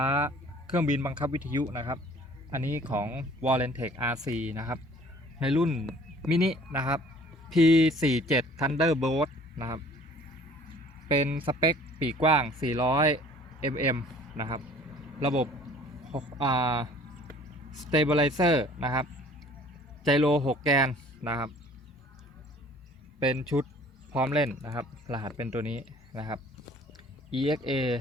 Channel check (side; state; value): both; normal; correlation 0.52